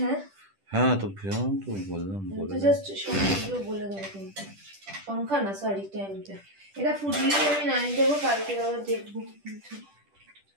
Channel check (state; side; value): late; left; 10 ms